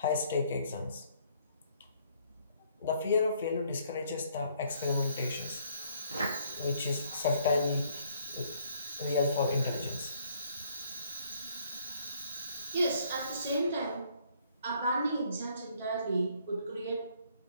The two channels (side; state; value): both; inverted; correlation -0.65